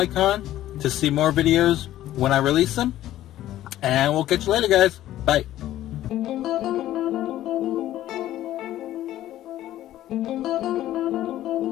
to see more videos when I release them. And we'll catch you later guys. Bye.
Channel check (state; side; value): quieter; right; 13.6 dB